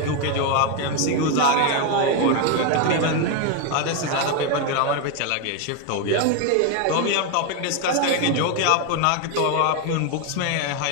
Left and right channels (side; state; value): both; different; correlation 0.01